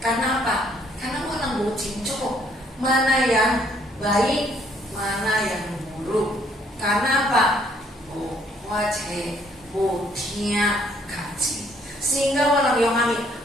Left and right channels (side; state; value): both; normal; correlation 0.65